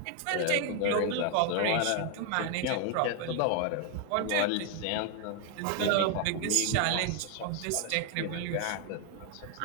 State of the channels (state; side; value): different; both; correlation 0.00